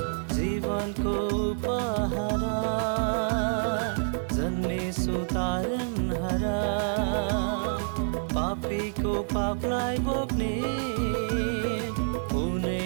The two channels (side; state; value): left; silent; 59 dB below the other